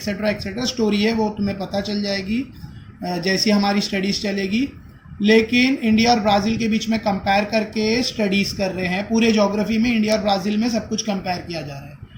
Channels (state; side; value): identical; both; correlation 1.00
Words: एक्सेट्रा, स्टोरी है वो तुम्हें पता चल जाएगी जैसी हमारी स्टडीज़ चलेगी। लेकिन इंडिया और ब्राज़ील के बीच में कंपेयर करके स्टडीज़ कर रहे हैं, पूरे ज्योग्राफी में इंडिया और ब्राज़ील में सब कुछ कंपेयर किया जा रहा है,